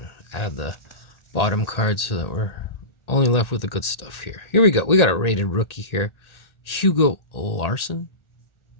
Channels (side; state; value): right; late; 1.8 ms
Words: add the bottom card so that we're only left with the good stuff here. Here we go. We got a rated rookie here. Hugo Larson.